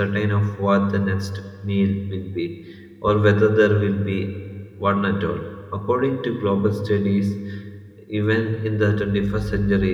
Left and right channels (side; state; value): both; identical; correlation 1.00